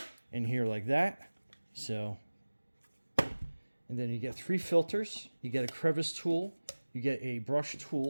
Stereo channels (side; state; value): both; inverted; correlation -1.00